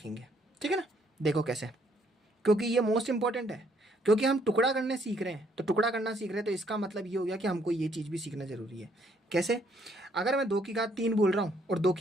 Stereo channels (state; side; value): normal; both; correlation 0.68